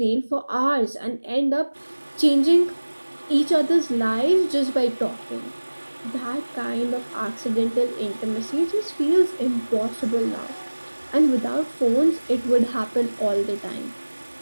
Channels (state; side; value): inverted; both; correlation -1.00